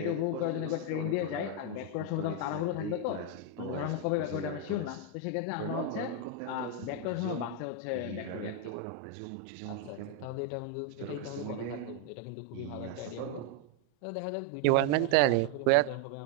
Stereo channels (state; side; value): different; both; correlation 0.01